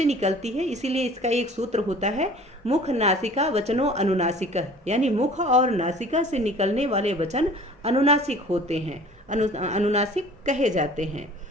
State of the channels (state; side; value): normal; both; correlation 0.47